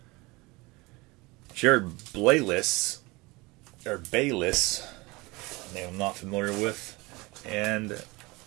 Jared Bayless. Or Bayless. Name I'm not familiar with. And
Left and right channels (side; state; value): left; quieter; 23.9 dB